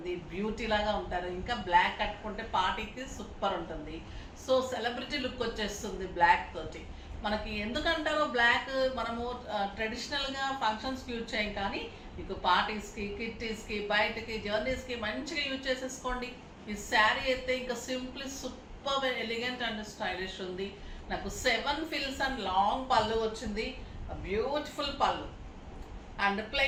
బ్యూటీ లాగా ఉంటారు. ఇంకా బ్లాక్ కట్టుకుంటే పార్టీకి సూపర్ ఉంటుంది. సో సెలబ్రిటీ లుక్ వచ్చేస్తుంది బ్లాక్ తోటి. మనకి ఎందుకంటారో బ్లాక్ మనము ట్రెడిషనల్గా ఫంక్షన్స్కి యూజ్ చేయం, కానీ మీకు పార్టీస్కి, కిట్టీస్కి, బయటకి, జర్నీస్కి మంచిగా యూజ్ చేసేసుకోండి. ఈ శారీ అయితే ఇంకా simply super elegant and stylish ఉంది. నాకు 7 ఫిల్స్ అండ్ లాంగ్ పళ్ళు వచ్చింది, బ్యూటిఫుల్ పళ్ళు and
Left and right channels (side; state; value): both; identical; correlation 1.00